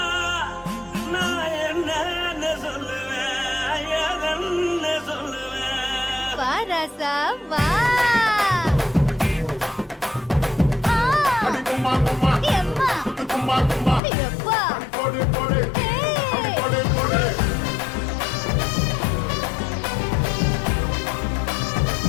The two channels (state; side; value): drops out; right; at 14.0 s